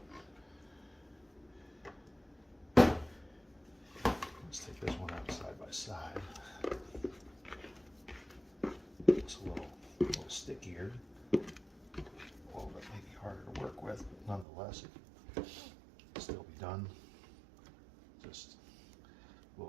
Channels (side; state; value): left; drops out; at 14.5 s